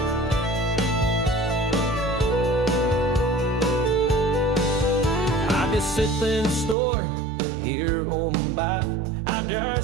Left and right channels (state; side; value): drops out; left; at 6.8 s